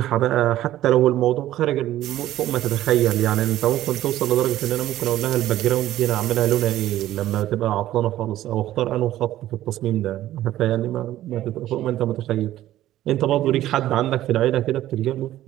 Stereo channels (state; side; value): quieter; left; 13.9 dB